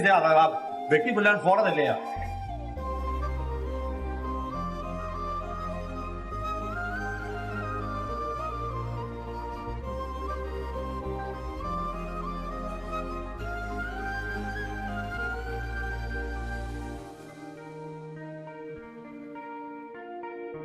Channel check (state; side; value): identical; both; correlation 1.00